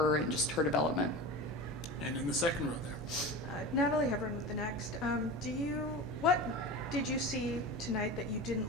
and just her development. And in the second row there. Natalie Hebron with the next. What did you see tonight that you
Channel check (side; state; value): right; noise; hum, 14 dB below the sound